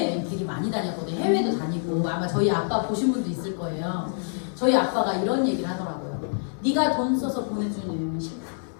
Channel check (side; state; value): right; silent; 61 dB below the other